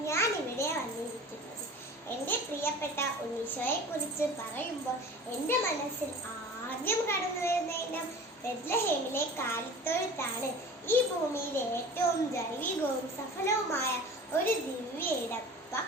ഞാൻ ഇവിടെ വന്നിരിക്കുന്നത്. എൻ്റെ പ്രിയപ്പെട്ട ഉണ്ണീശോയെ കുറിച്ച് പറയുമ്പോൾ എൻ്റെ മനസ്സിൽ ആദ്യം കടന്നു വരുന്ന ഇനം ബെത്ലഹേമിലെ കാലിത്തൊഴുത്താണ്. ഈ ഭൂമിയിലെ ഏറ്റവും ജൈവികവും സഫലവുമായ ഒരു ദിവ്യ ഇടം.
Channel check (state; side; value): normal; both; correlation 0.40